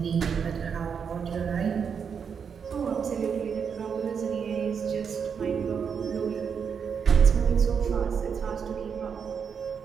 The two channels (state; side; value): quieter; left; 6.7 dB